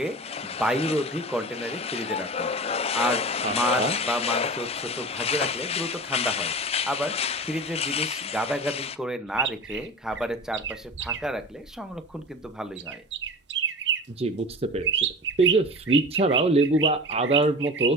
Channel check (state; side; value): normal; both; correlation 0.33